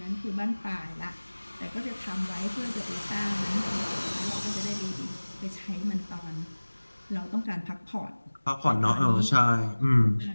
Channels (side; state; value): both; inverted; correlation -1.00